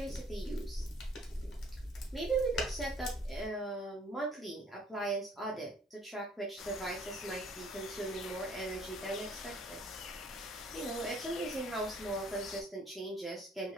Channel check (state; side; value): normal; both; correlation 0.58